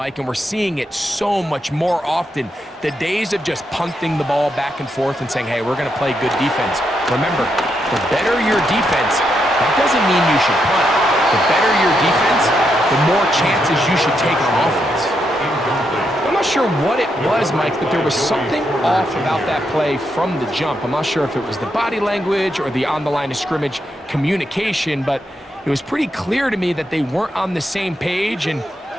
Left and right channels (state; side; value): normal; both; correlation 0.81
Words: and we're seeing it so much more often. The days of just punting the ball back and forth and saying, hey, we're going to play good defense. Remember, the better your defense, that doesn't mean you should punt. The better your defense, the more chances you should take on offense. I'm not sure what it was, Mike, but there was something off about that play from the jump. I'm not sure if it was the body language or the on-the-line of scrimmage communication, but it was pretty clear to me that they weren't on the same page, and